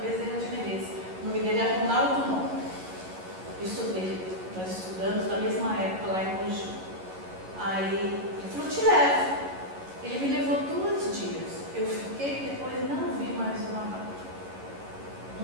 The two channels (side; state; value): left; late; 11 ms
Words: Bezerra de Menezes. O nome dele é Ronaldo Mon. Nós estudamos na mesma época lá em Mogi. Aí ele falou, te levo. Ele me levou 2 dias. Eu fiquei, depois não vi mais uma vaga.